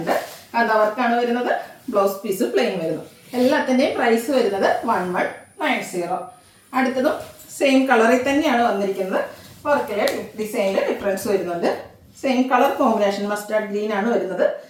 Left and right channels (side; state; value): both; identical; correlation 1.00